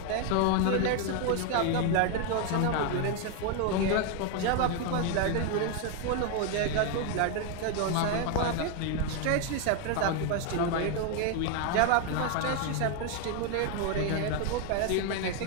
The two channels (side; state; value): both; different; correlation 0.01